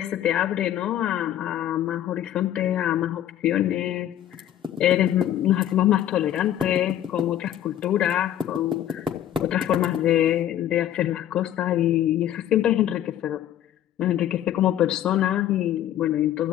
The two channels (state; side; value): quieter; right; 11.6 dB